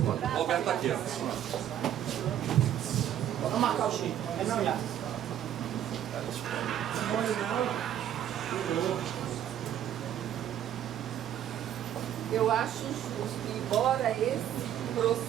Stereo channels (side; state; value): left; quieter; 10.7 dB